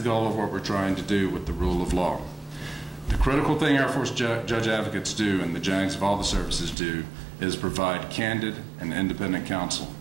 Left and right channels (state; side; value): drops out; left; at 6.8 s